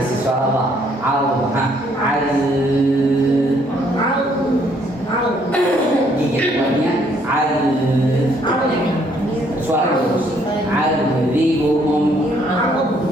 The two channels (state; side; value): normal; both; correlation 0.67